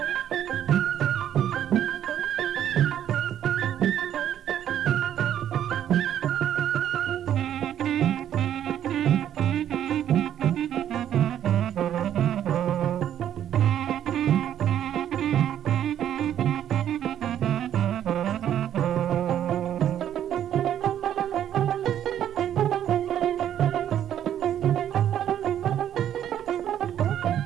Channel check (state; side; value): quieter; left; 10.5 dB